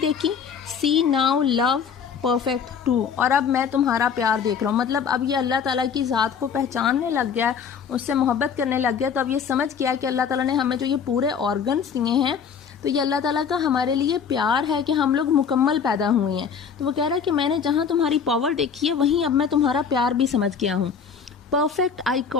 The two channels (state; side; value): quieter; right; 6.6 dB